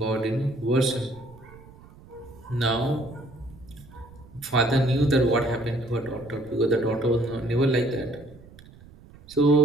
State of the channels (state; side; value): noise; right; rumble, 22 dB below the sound